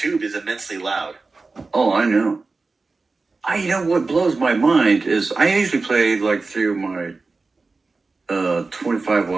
is immensely loud. Oh, I know. You know what blows my mind is I usually play like through my 25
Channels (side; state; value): left; quieter; 3.8 dB